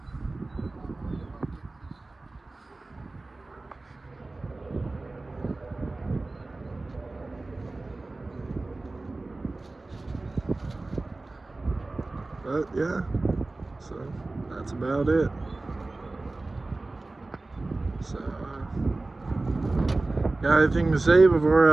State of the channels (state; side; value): quieter; left; 3.2 dB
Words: But yeah, so that's about it. So, got anything to say